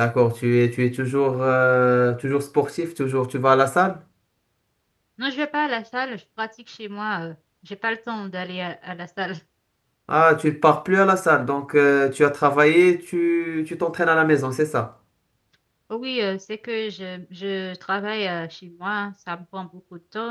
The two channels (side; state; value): both; identical; correlation 1.00